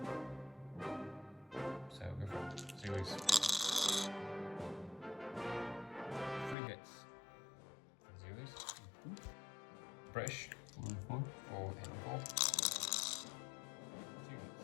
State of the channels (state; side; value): drops out; right; at 6.6 s